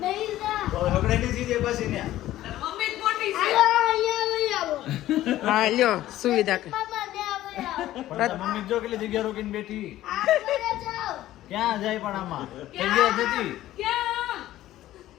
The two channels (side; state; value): right; quieter; 14.4 dB